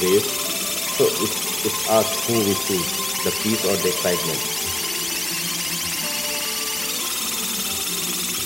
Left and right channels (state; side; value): noise; left; hum, 29 dB below the sound